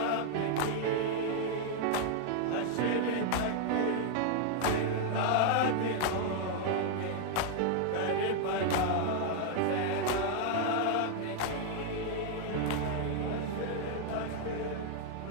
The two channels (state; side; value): different; both; correlation 0.00